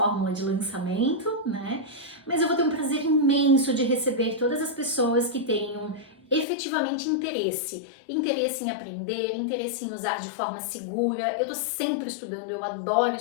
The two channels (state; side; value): drops out; right; at 6.5 s